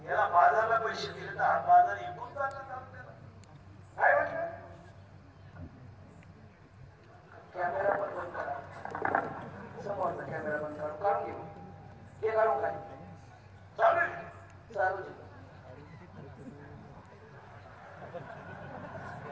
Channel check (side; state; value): both; identical; correlation 1.00